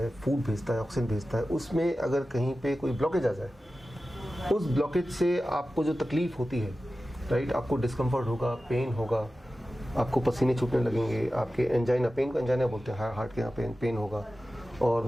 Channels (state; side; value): normal; both; correlation 0.94